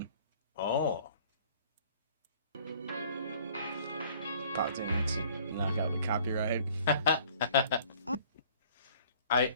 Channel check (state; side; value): inverted; both; correlation -0.55